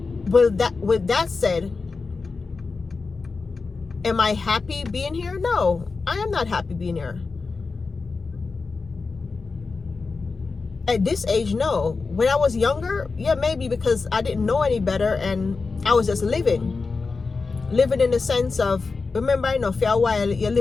with that said, am I happy being here? No, I am not happy being here. At this age, no. When I was younger, yeah, maybe, because I didn't know any better and I was just living in the sense of, remember, I know for a while you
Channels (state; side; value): quieter; right; 4.3 dB